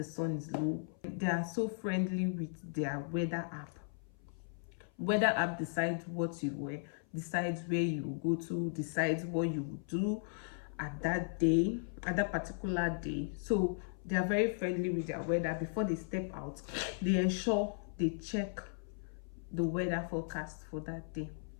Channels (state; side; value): silent; right; 53 dB below the other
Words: sun is low. They are so friendly with their weather app. Weather app decides what you wear, decides where you go to, decides what you will do at that day, at that particular day. So they are very friendly with their weather. Before they step out, they ensure they check the weather forecast for that day.